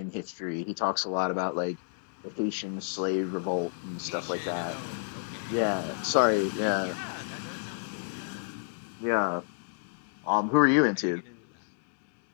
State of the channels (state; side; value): silent; right; digital silence